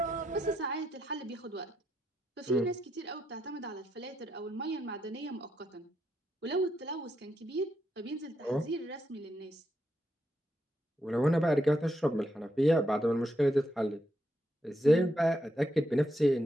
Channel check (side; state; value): both; normal; correlation 0.81